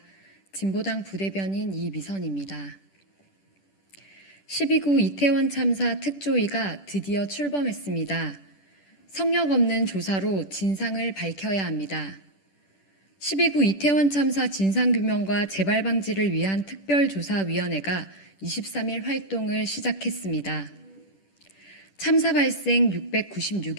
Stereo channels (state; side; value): late; right; 10 ms